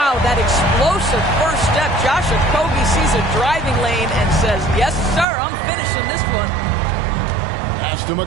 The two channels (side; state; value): left; drops out; at 5.2 s